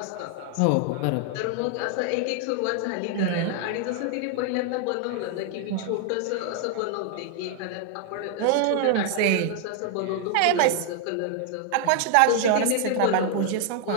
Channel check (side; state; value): both; different; correlation 0.00